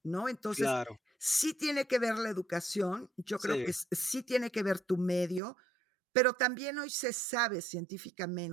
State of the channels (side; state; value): left; drops out; at 5.4 s